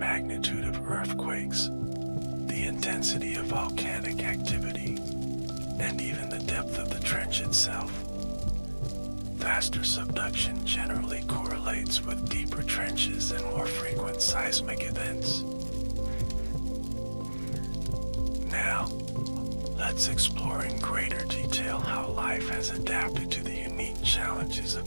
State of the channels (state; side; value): inverted; both; correlation -1.00